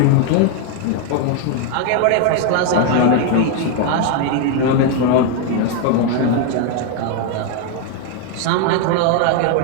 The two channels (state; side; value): different; both; correlation 0.01